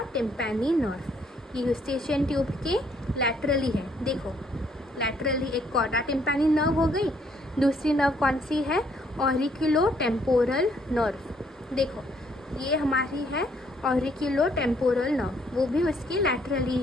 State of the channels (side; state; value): both; normal; correlation 0.67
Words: टिम्पैनी नर्व। ये यूस्टेशियन ट्यूब के लैटरली है। देखो, लैटरली एक कॉडा टिम्पैनी नर्व हो गई, दूसरी नर्व कौन सी है? Auriculo temporal nerve. देखो ये हमारी है ऑरिकुलो टेम्पोरल नर्व, वो भी उसकी